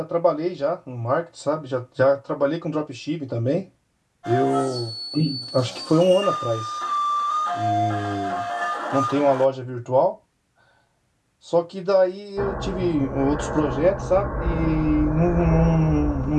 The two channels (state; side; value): identical; both; correlation 1.00